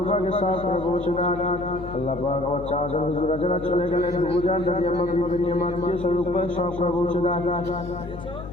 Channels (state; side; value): noise; left; hum, 12 dB below the sound